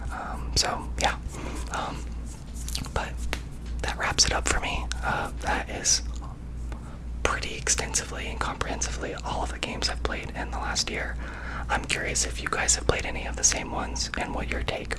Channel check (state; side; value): identical; both; correlation 1.00